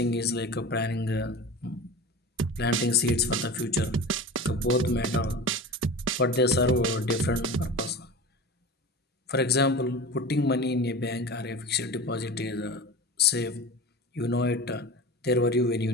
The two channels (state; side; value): normal; both; correlation 0.32